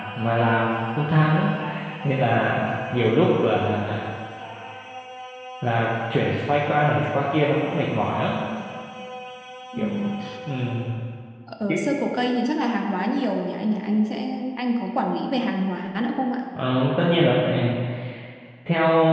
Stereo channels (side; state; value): both; identical; correlation 1.00